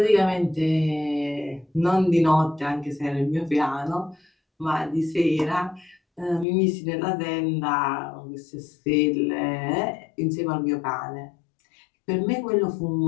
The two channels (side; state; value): right; drops out; at 6.5 s